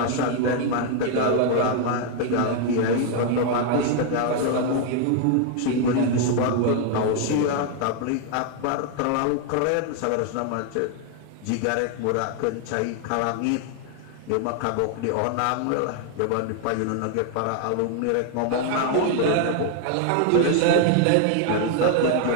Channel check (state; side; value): different; both; correlation 0.00